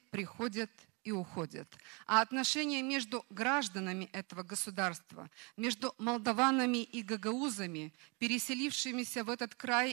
приходят и уходят. А отношения между гражданами этого государства, между молдаванами и гагаузами, переселившимися в этот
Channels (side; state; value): left; quieter; 30.9 dB